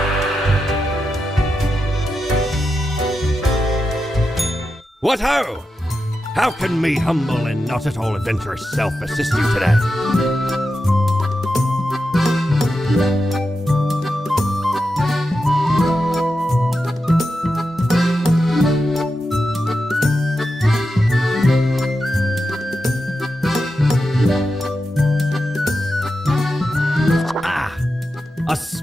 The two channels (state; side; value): normal; both; correlation 0.89